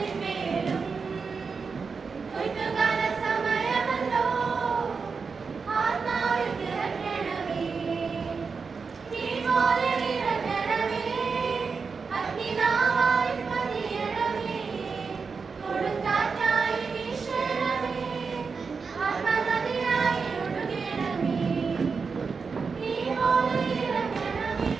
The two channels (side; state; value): left; quieter; 5.1 dB